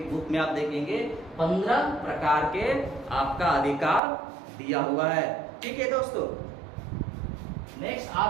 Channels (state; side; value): drops out; left; at 4.0 s